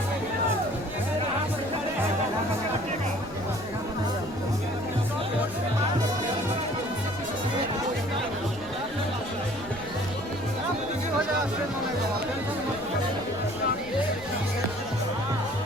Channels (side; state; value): left; noise; rumble, 19 dB below the sound